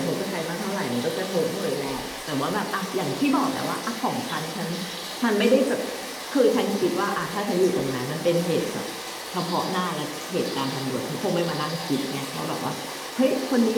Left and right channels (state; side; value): identical; both; correlation 1.00